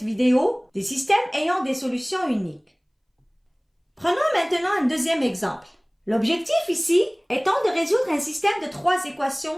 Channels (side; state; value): both; identical; correlation 1.00